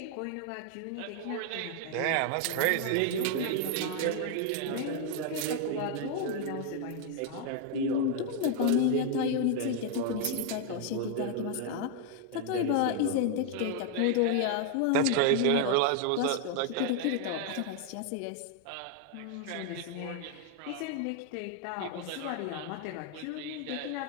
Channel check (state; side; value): different; both; correlation 0.00